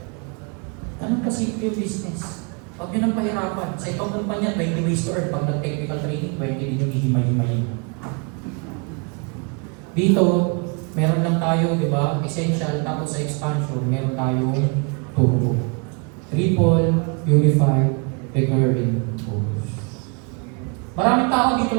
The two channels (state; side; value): quieter; left; 34.5 dB